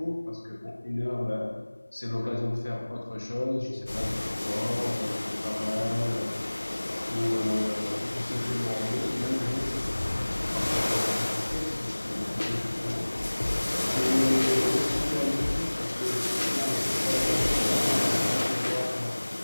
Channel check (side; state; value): both; inverted; correlation -1.00